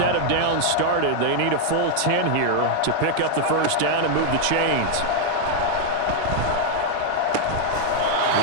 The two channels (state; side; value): different; both; correlation 0.00